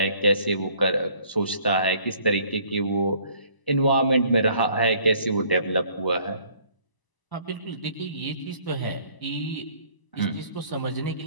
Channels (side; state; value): right; late; 1.0 ms